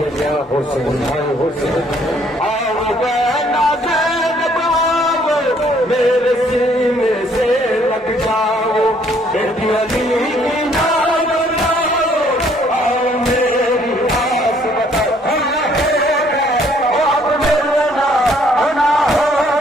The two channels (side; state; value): both; normal; correlation 0.63